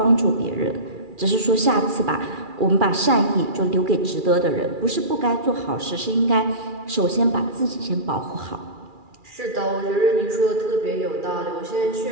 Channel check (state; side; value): late; left; 2.4 ms